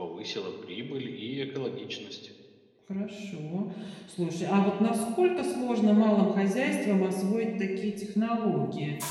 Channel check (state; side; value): identical; both; correlation 1.00